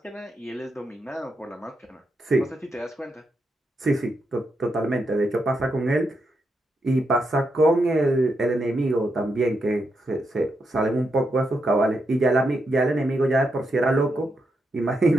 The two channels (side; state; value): both; normal; correlation 0.83